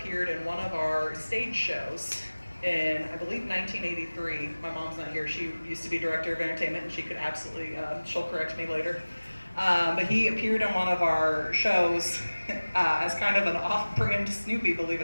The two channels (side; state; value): both; inverted; correlation -1.00